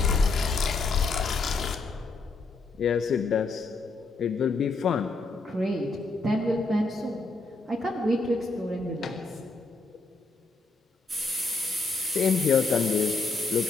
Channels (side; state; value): right; quieter; 3.6 dB